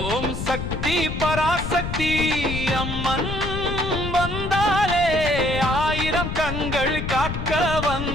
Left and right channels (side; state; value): left; noise; rumble, 5 dB below the sound